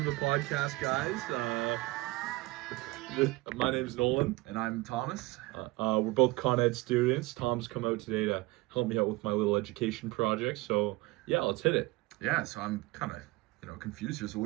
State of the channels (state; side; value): quieter; left; 21.6 dB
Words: to the podcast, guys. My name's Nolan. And I'm Thomas. We're both Con Ed students. Tom's come out today to help me out with my little education project. So yeah, let's hit it. Yeah, so I'm kind of, confused here. So